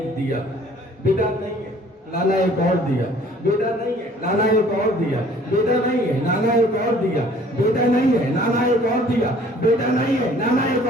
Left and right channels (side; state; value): both; normal; correlation 0.54